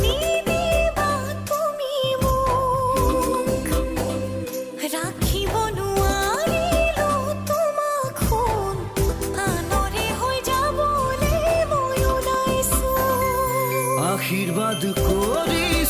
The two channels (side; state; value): both; identical; correlation 1.00